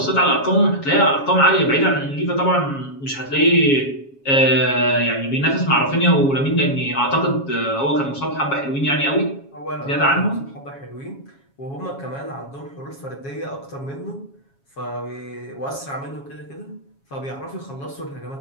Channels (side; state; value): right; late; 7.3 ms